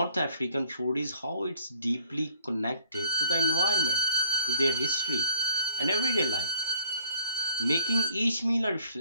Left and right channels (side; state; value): both; inverted; correlation -0.58